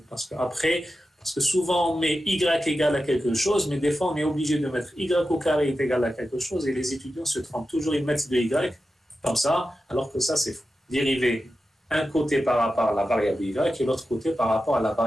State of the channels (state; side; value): normal; both; correlation 0.92